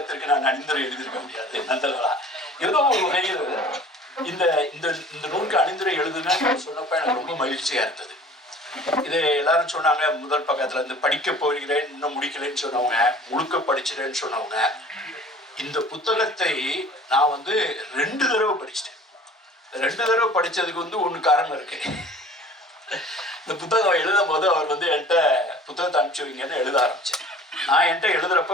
நான் அணிந்துரை எழுதியிருக்க முடியாது. நந்தலா ஏதோ ஒரு வகையில் இந்த இந்த நூலுக்கு அணிந்துரை எழுதுன்னு சொன்னப்ப எனக்கு ரொம்ப மகிழ்ச்சியா இருந்தது. இது எல்லாரும் சொன்னாங்க, முதல் பக்கத்துல படிக்க போகிறேன் இன்னும் முடிக்கலன்னு சொன்னவங்க, முழுக்க படிச்சிட்டேன்னு சொன்னவங்க. இந்த புத்தகத்தை நான் 2 தடவை படிச்சிட்டேன். 2 தடவை படிச்சதுக்கு ஒன்று காரணம் இருக்கு. இந்த புத்தகம் எழுதும் போது அவர் என்கிட்ட புத்தகத்தை அனுப்பிச்சு வைங்கன்னு எழுத ஆரம்பிச்சேன். நான் என்கிட்ட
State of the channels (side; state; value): both; normal; correlation 0.47